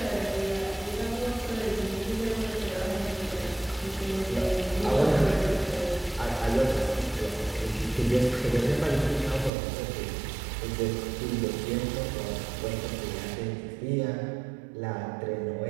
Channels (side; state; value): left; drops out; at 9.5 s